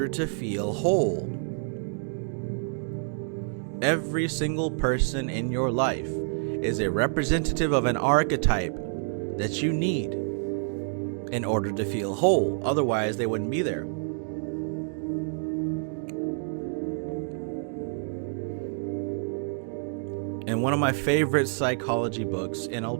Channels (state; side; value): silent; left; 58 dB below the other